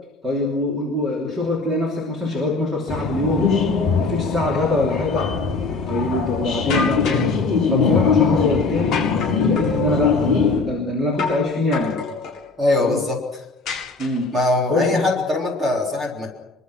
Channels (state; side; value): quieter; right; 3.4 dB